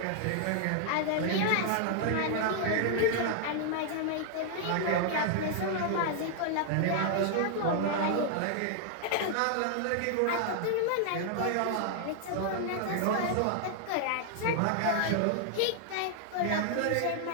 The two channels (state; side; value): different; both; correlation 0.00